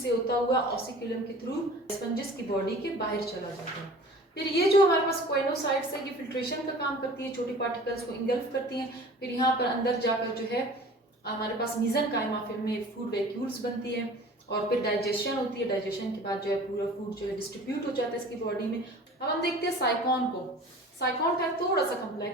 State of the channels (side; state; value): both; normal; correlation 0.44